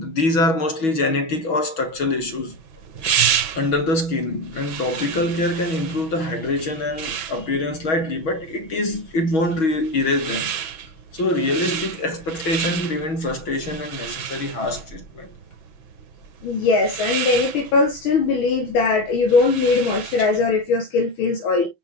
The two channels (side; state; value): right; late; 6.3 ms